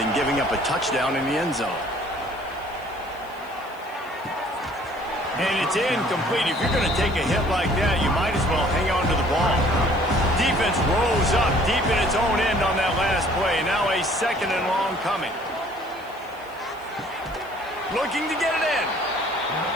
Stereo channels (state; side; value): noise; left; hiss, 27 dB below the sound